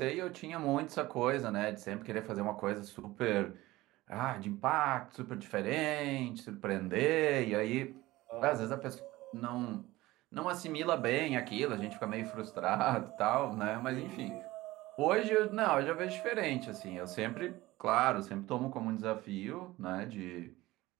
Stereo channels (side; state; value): left; quieter; 18.3 dB